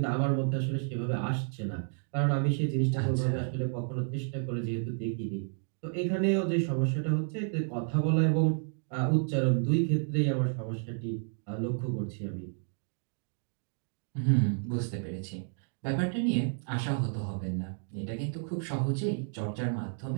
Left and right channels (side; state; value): left; silent; 57 dB below the other